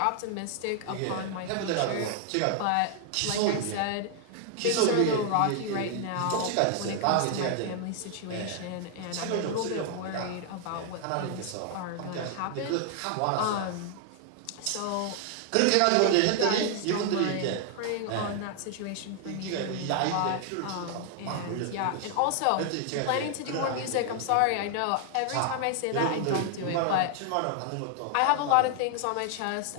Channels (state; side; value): different; both; correlation 0.00